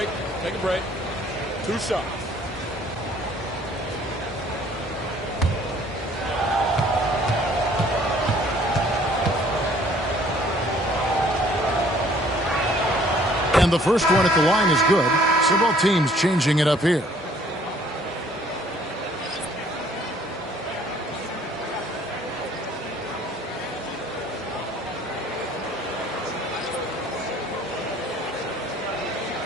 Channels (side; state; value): both; normal; correlation 0.58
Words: Take a break. 2 shots. And the first one at the line is good. Several teams changing it up here.